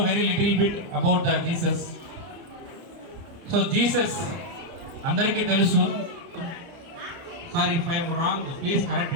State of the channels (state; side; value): late; left; 30 ms